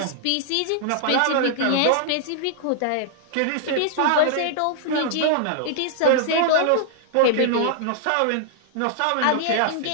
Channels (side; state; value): both; different; correlation -0.01